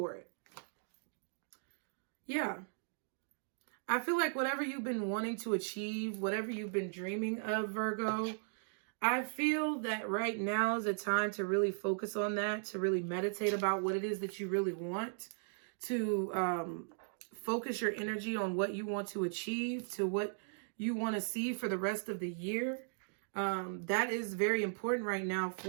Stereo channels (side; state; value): left; silent; digital silence